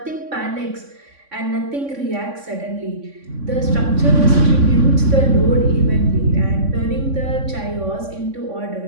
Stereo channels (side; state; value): left; late; 3.6 ms